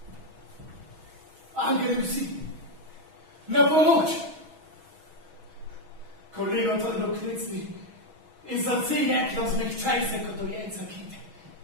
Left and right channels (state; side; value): late; left; 6.2 ms